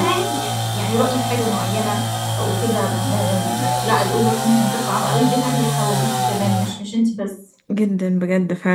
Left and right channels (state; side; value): identical; both; correlation 1.00